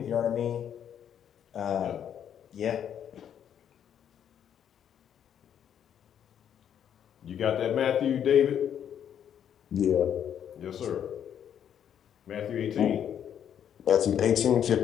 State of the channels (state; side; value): quieter; right; 9.2 dB